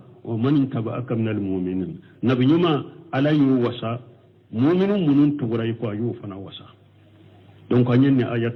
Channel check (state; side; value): identical; both; correlation 1.00